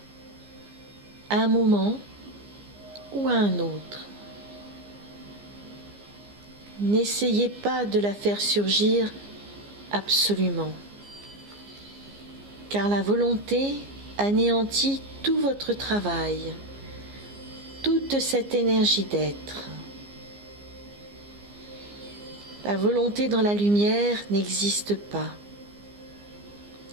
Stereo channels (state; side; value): late; left; 15 ms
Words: à un moment ou à un autre. N'essayez pas de la faire surgir absolument, car la volonté anéantit tout votre travail, toute cette énergie d'être. La volonté dans la lumière n'existe pas.